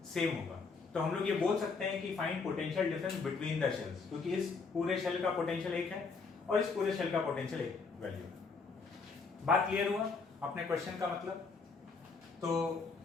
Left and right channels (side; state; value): right; quieter; 4.6 dB